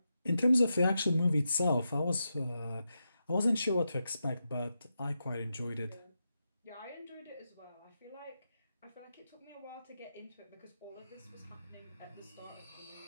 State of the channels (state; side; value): inverted; both; correlation -0.87